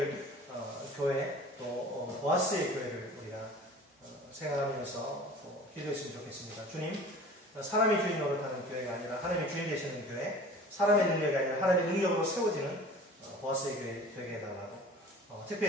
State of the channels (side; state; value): both; normal; correlation 0.43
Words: 교회 또 보아스의 교회를 우리가 생각하면서 기도했으면 좋겠습니다. 주님, 사람이 주인 노릇하는 교회가 아니라 하나님이 주인 되시는 교회, 사람의 능력이 아니라 하나님의 능력으로 세워지는 보아스의 교회 되게 해달라고.